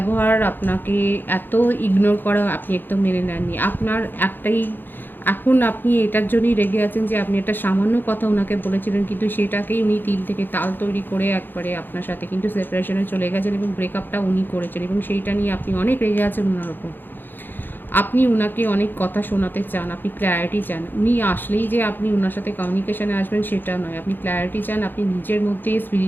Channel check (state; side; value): late; right; 0.095 ms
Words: আপনাকে এত ইগনোর করা আপনি একদম মেনে নেননি। আপনার একটাই এখন আপনি এটার জন্যই রেগে আছেন যে আপনি একটা সামান্য কথা উনাকে বলেছিলেন, কিন্তু সেটাকেই উনি তিল থেকে তাল তৈরি করে একবারে আপনার সাথে কিন্তু সেপারেশনে চলে গেছেন এবং ব্রেকআপটা উনি করেছেন এবং সেইটা নিয়ে আপনি অনেক রেগে আছেন উনার ওপর। আপনি উনাকে অনেক কথা শোনাতে চান, আপনি ক্ল্যারিটি চান। উনি আসলেই যে আপনি উনার সাথে কমিউনিকেশনে আসবেন সেটা নয়। আপনি ক্ল্যারিটি চান, আপনি নিজের মধ্যে